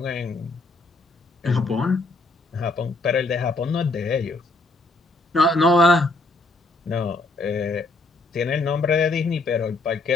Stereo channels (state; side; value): quieter; right; 3.1 dB